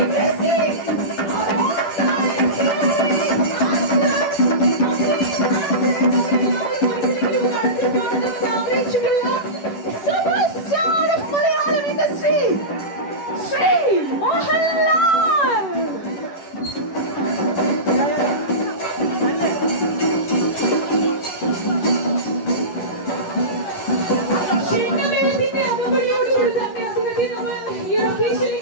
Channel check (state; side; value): late; right; 11 ms